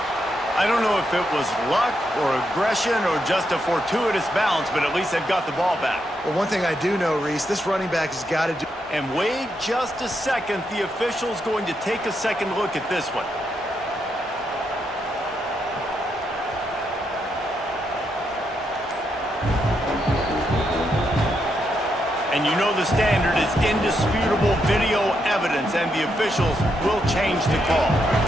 I don't know if it was luck or aggression or just a fortuitous bounce, but at least they've got the ball back. Well, one thing I do know, Reese, this running back has got to do... And wait just a second. The official's going to take a second look at this one. And you know the standard is indisputable video evidence, and the officials will change the call.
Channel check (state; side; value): normal; both; correlation 0.81